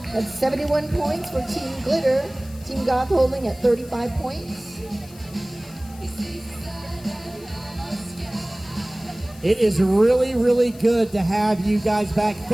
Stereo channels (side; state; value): left; noise; hiss, 22 dB below the sound